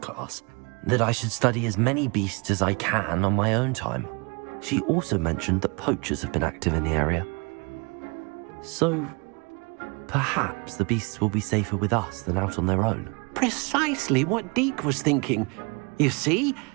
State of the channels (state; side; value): quieter; left; 30.7 dB